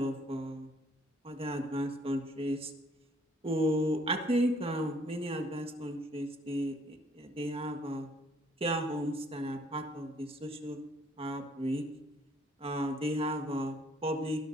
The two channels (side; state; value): both; normal; correlation 0.63